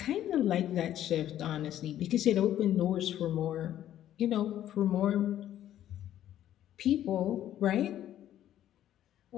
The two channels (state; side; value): quieter; right; 11.9 dB